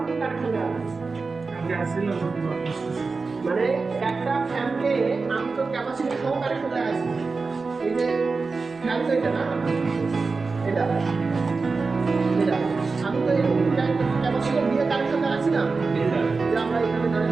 কানেকশন দেওয়া আছে। মানে একটা ফ্যানকে আমি তো ক্যাপাসিটি সহ কানেকশন দেওয়া আছে। এই যে ফ্যান তো এটা না, এটা এটা আমি তো এই ক্যাপাসিটি দিয়ে কানেকশন দেওয়া আছে না, যে আমরা এখানে ধরেন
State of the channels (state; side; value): quieter; left; 4.2 dB